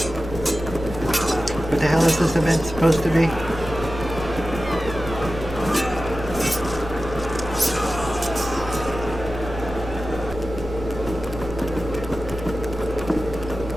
What the hell is this event supposed to be?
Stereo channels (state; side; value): normal; both; correlation 0.94